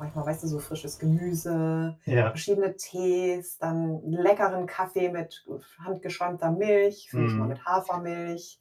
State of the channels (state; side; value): identical; both; correlation 1.00